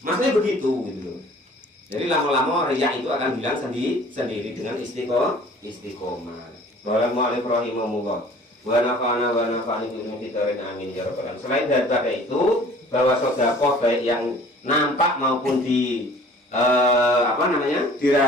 begitu gitu loh. Jadi lama-lama riya itu akan hilang sendiri dengan istiqomah. Bismillahirrahmanirrahim. Wa nafa'ana wa nafa'ani bi'ilmi fitarin amin ya rabbal alamin. Selain daripada itu, bahwa sedekah baik yang nampak maupun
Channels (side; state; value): both; normal; correlation 0.50